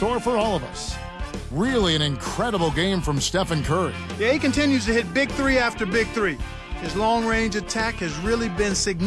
for all of us. Really an incredible game from Stephen Curry. Yeah, he continues to hit big three after big three. His long-range attack has really been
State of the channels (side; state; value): both; identical; correlation 1.00